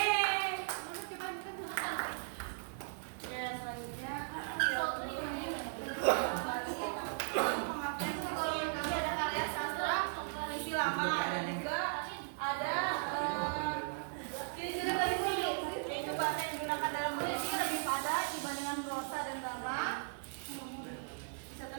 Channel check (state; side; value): silent; left; digital silence